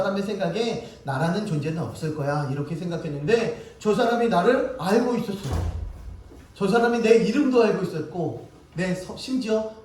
생각에 나라는 존재는 없을 거야. 이렇게 생각했는데 저 사람이 나를 알고 있었어요. 저 사람이 내 이름도 알고 있었고 심지어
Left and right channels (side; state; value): both; identical; correlation 1.00